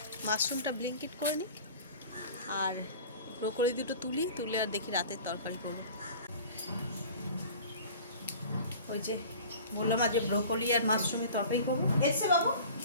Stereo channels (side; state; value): both; inverted; correlation -0.42